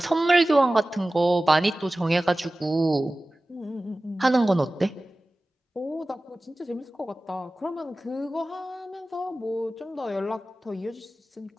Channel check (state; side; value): normal; both; correlation 0.96